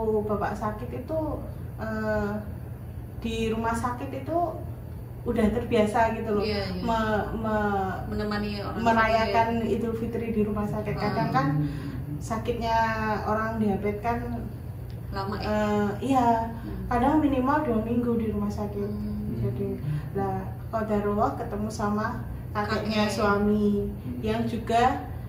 bapak sakit itu di rumah sakit itu udah terbiasa gitu loh. Iya. Menemani orang merayakan Idul Fitri di rumah sakit. Kadang kan sakitnya orang diabetes kan lama ya? Iya, kadang minimal 2 minggu di rumah sakit. Jadi lah qadarullah ketemu sama kakeknya suami yang juga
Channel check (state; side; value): identical; both; correlation 1.00